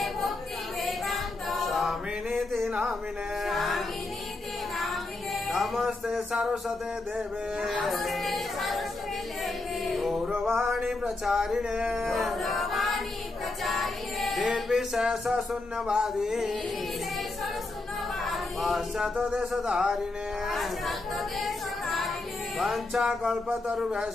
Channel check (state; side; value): quieter; right; 3.1 dB